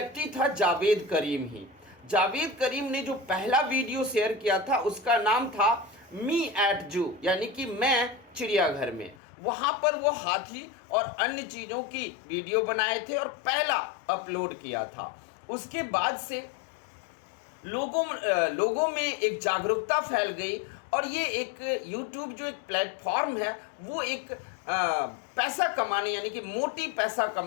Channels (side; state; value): right; drops out; at 9.2 s